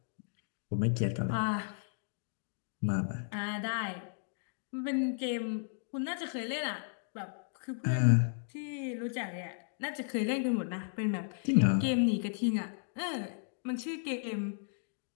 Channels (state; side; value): silent; right; digital silence